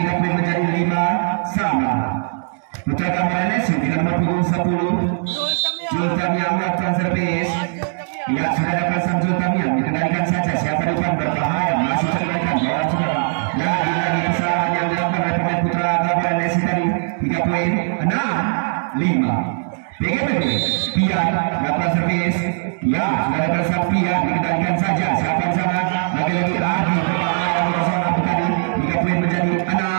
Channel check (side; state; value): left; silent; digital silence